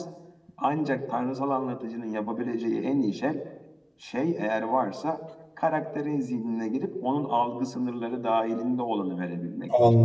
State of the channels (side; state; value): both; identical; correlation 1.00